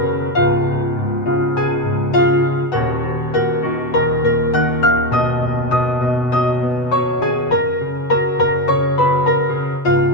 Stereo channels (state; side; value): late; right; 8.0 ms